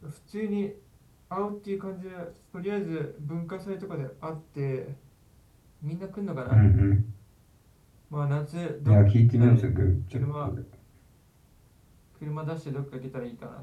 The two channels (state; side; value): identical; both; correlation 1.00